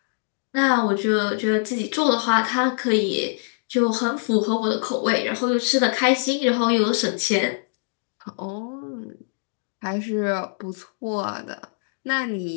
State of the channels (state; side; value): silent; right; digital silence